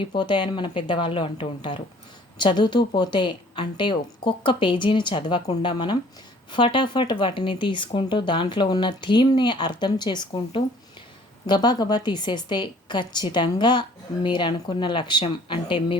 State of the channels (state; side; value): normal; both; correlation 0.55